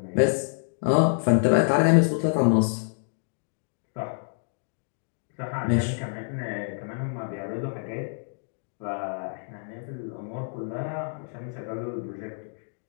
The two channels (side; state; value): right; silent; digital silence